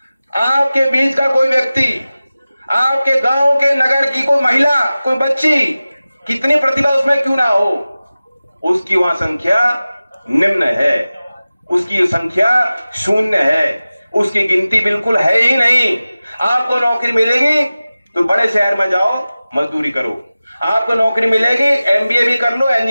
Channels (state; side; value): inverted; both; correlation -0.96